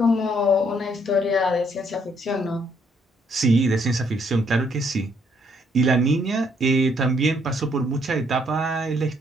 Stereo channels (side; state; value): both; normal; correlation 0.69